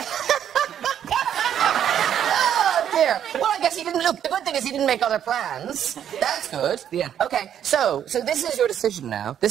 Oh, dear. Well, I guess he didn't look. The good thing is he didn't make other plans. That's good. Yeah. Okay, so this is your decision now.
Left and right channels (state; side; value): quieter; left; 9.6 dB